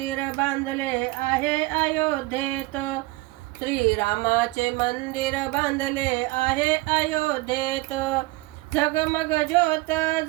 बांधले आहे अयोध्येत, श्रीरामाचे मंदिर बांधले आहे अयोध्येत। झगमग ज्योत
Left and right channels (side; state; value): left; quieter; 21.0 dB